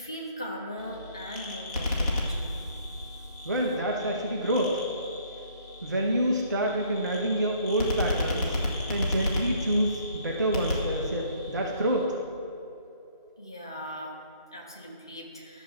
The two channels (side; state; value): both; inverted; correlation -0.61